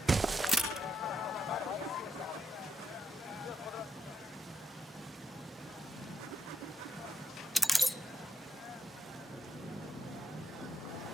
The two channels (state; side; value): normal; both; correlation 0.78